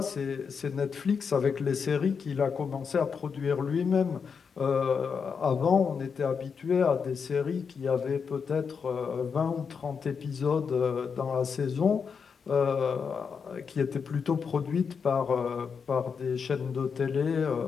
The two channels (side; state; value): right; quieter; 6.0 dB